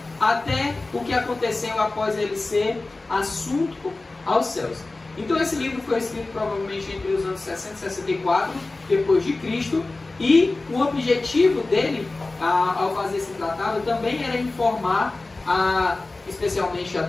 até o que aconteceu após ele ser assunto aos céus. Então esse livro foi escrito provavelmente entre os anos 60 e 64 depois de Cristo, e o objetivo dele, ao fazer esse tratado, também era informar, especialmente a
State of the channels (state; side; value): quieter; right; 3.2 dB